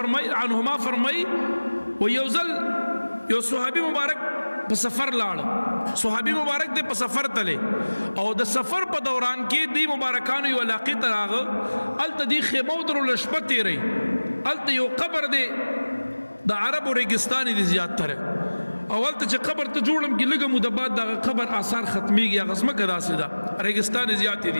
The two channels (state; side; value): inverted; both; correlation -1.00